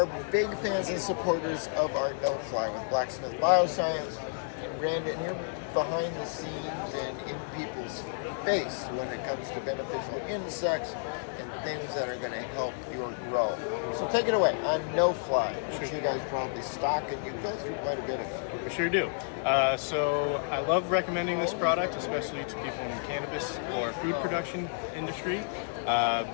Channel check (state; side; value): silent; right; 56 dB below the other